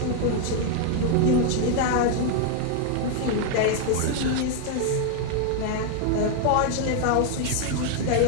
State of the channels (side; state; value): both; different; correlation 0.00